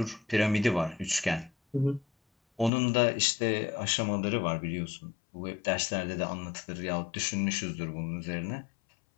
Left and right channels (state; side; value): drops out; right; at 2.7 s